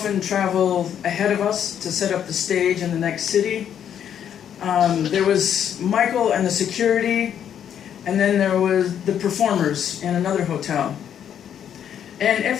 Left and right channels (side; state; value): right; quieter; 9.2 dB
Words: travel ahead of us to set up the stage in the next city. There was Michael and the security, and then there was the performers in another hotel. And at